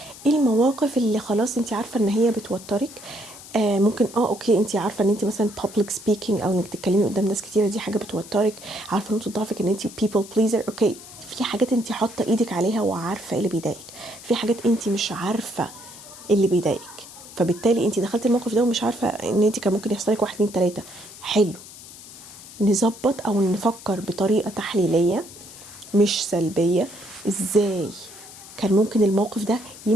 ايه المواقف اللي خلاص انت عارفه ان هي بتوترك. ممكن اوكي، انت عارفه ان انت مثلا public speaking او انك تتكلمي قدام ناس كتيره دي حاجه بتوترك، عارفه نقطه ضعفك ان انت people pleaser. اوكي، في حاجات انت حاطه ايدك عليها وعارفه ايه اللي بيضايقك، في حاجات انت مش عارفه اللي بيضايقك، فبالتالي انت دخلت الموقف ده ومش عارفه ان انت كان ممكن يحصل لك 1 2 3. حلو، نظبط او نفكر بطريقه تحليليه مش سلبيه. ازاي كان ممكن الموقف ده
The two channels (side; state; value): left; noise; hiss, 17 dB below the sound